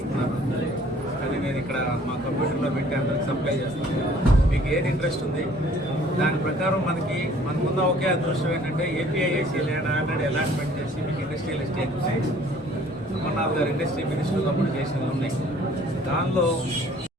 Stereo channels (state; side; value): normal; both; correlation 0.55